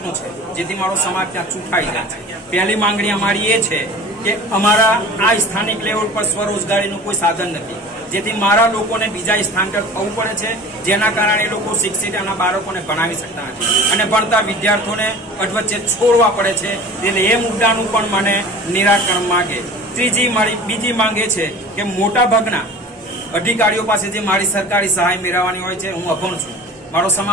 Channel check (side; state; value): both; normal; correlation 0.40